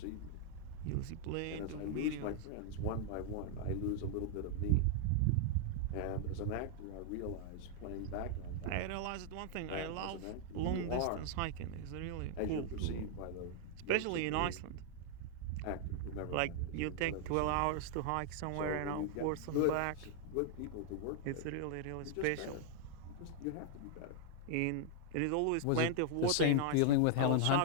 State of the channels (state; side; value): different; both; correlation 0.00